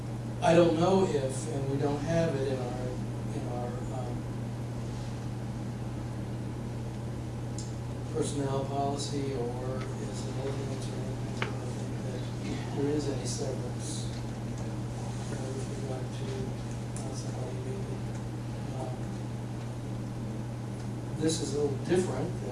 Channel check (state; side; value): identical; both; correlation 1.00